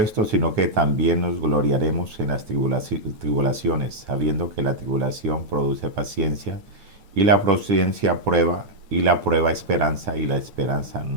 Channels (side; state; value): left; late; 9.2 ms